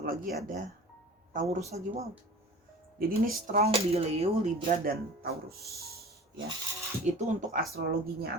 lagi ada Taurus lagi. Wow. Jadi ini strong di Leo, Libra, dan Taurus ya. Itu untuk astrologinya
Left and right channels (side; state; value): both; normal; correlation 0.40